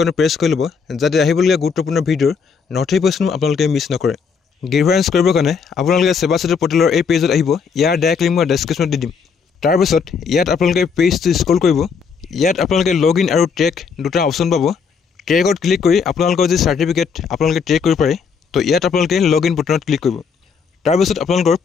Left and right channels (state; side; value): quieter; right; 5.9 dB